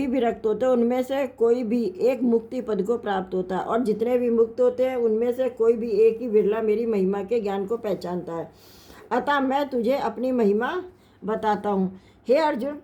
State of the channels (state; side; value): identical; both; correlation 1.00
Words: विरक्त होते हैं उनमें से कोई भी एक मुक्ति पद को प्राप्त होता है, और जितने भी मुक्त होते हैं उनमें से कोई भी एक ही बिरला मेरी महिमा के ज्ञान को पहचानता है। अतः मैं तुझे अपनी महिमा बताता हूँ। हे अर्जुन,